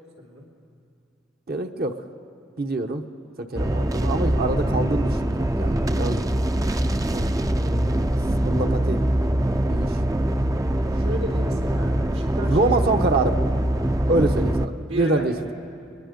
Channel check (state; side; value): normal; both; correlation 0.75